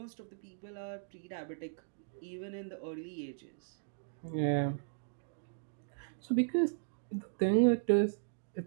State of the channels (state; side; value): silent; left; digital silence